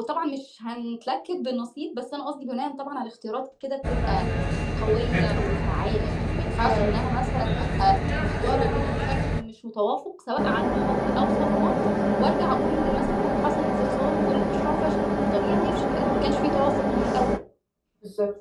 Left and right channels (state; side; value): identical; both; correlation 1.00